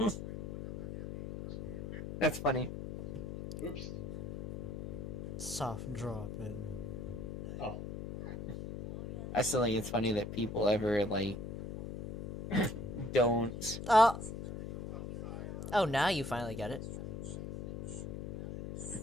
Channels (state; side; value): noise; left; hum, 7 dB below the sound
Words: That's funny. Oops. Soft dropping. Oh. I still think it's funny that people ever like don't. Oh, now you finally get it.